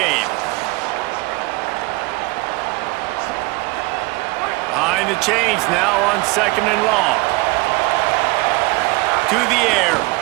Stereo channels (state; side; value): quieter; left; 23.3 dB